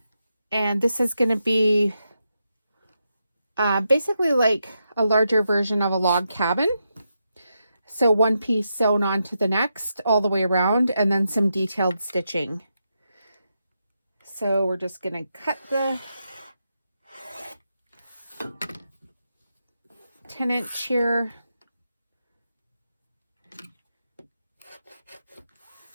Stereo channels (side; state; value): both; inverted; correlation -0.85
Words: and this is going to be basically like a larger version of a log cabin. So one piece sewn onto the next all the way around, and then some detailed stitching. So we're just going to cut the 10-inch here.